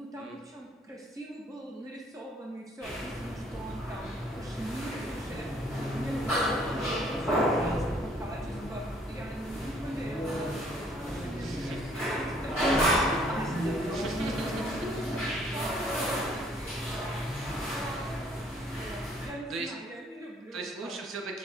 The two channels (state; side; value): normal; both; correlation 0.62